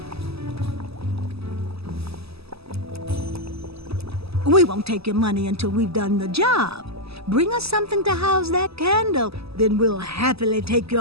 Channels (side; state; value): left; late; 0.78 ms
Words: We won't take your money until we've done the job. Bring us something to house that candle, then we'll happily take